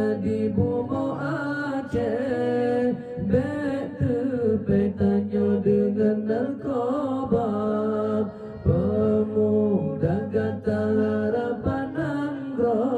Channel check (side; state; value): both; identical; correlation 1.00